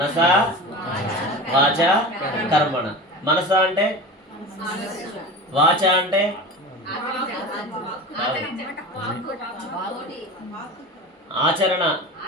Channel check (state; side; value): normal; both; correlation 0.32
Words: వాచ కర్మణ. మనస అంటే, వాచ అంటే, ఆచరణ.